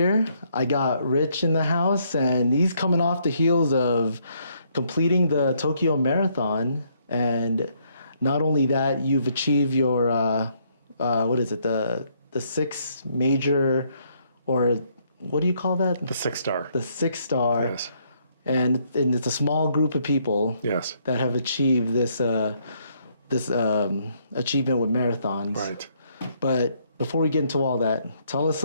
I got Rich in the house, and he's coming off the heels of completing the Tokyo Marathon. And not only that, you've achieved your, the six major, or what do you call that? The 6-star. The 6-star. Yes. And it's a small group of people. Yes. That have achieved this achievement with marathons. Right. But before we get into all that, tell us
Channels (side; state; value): both; inverted; correlation -0.70